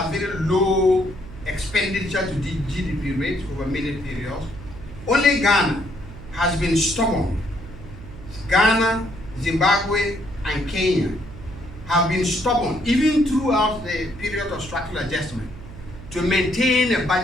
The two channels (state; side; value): noise; right; hum, 15 dB below the sound